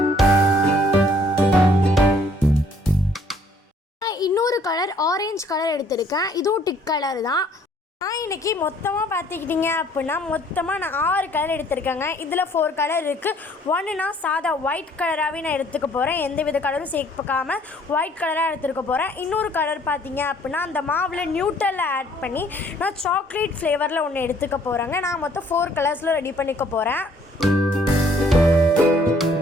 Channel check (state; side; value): normal; both; correlation 0.61